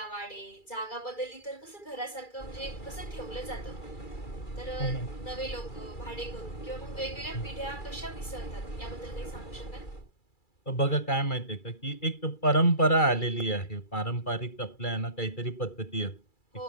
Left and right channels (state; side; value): late; right; 2.3 ms